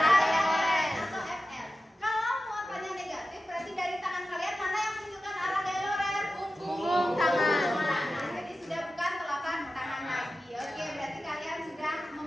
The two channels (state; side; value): normal; both; correlation 0.93